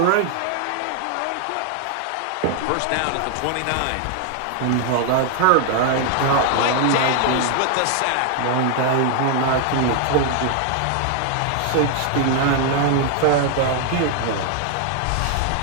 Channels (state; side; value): different; both; correlation 0.00